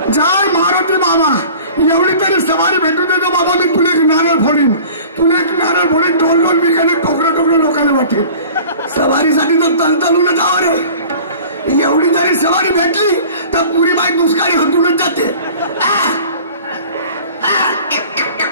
जय मारुती बाबा. एवढी तरी सवारी भेटू देतो बाबा. मी तुला एक नारळ फोडीन. टोल बिकाने टोकरं लोकांना वाटेल. सवारीसाठी तर तलतलून जावं रे. एवढी जरी सवारी भेटली तर पुरी बाई दुष्काळी हटूनच जाते.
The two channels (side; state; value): both; inverted; correlation -0.43